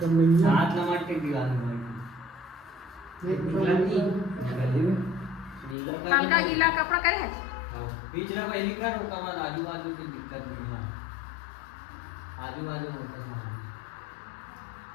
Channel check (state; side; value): drops out; right; at 5.8 s